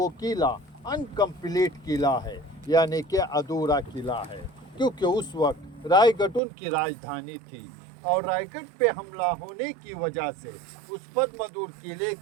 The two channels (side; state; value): left; drops out; at 6.4 s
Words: किला अनकम्प्लीट किला है, यानी कि अधूरा किला है, क्योंकि उस वक्त रायगढ़ उनकी राजधानी थी और रायगढ़ पे हमला होने की वजह से उस पद्मदुर्ग किले